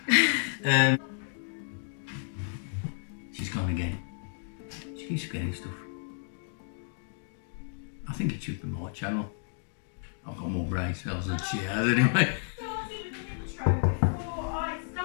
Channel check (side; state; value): right; silent; digital silence